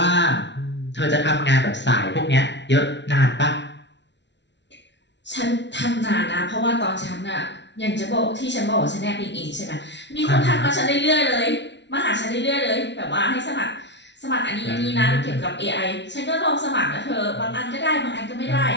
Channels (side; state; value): right; late; 0.51 ms